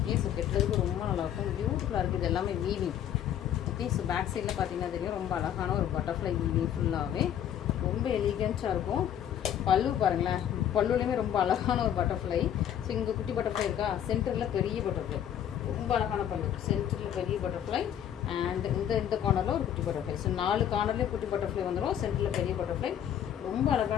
ஸோ கெட்டுறதுக்கு ரொம்ப நல்லாயிருக்கும், பியூட்டிஃபுல்லாக இருக்குது. இது எல்லாமே வீவிங். ஓகே, ஸோ பேக் சைடில் பார்த்தீங்கன்னா தெரியும், ரொம்ப அழகான ஒரு பட்டர்ஃப்ளை வீவிங். ஃபுல்லாகவே ரொம்ப எலிகென்ட்டாக இருக்கும். பல்லு பாருங்களேன், பல்லுலேயுமே ரொம்ப அழகான ஒரு பட்டர்ஃப்ளை. ஸோ இங்கே குட்டி பட்டர்ஃப்ளை இருக்கா, சென்டரில் பெரிய பட்டர்ஃப்ளை, ரொம்ப அழகான பல்லு. சென்டரில் பெரிய பட்டர்ஃப்ளை அண்ட் இந்த கார்னரில் ஒரு குட்டி பட்டர்ஃப்ளை. ஸோ 4 கார்னர்லேயும் குட்டி பட்டர்ஃப்ளை வந்துடும், சென்டரில் பெரிய பட்டர்ஃப்ளை. ரொம்ப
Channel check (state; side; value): quieter; right; 10.1 dB